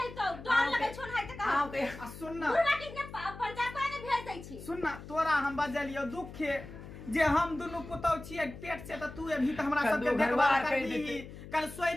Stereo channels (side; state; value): left; noise; hum, 14 dB below the sound